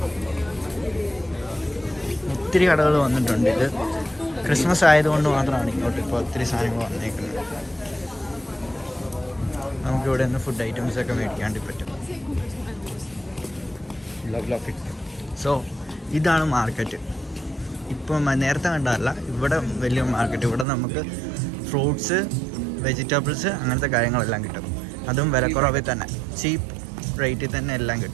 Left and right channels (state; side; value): drops out; left; at 20.7 s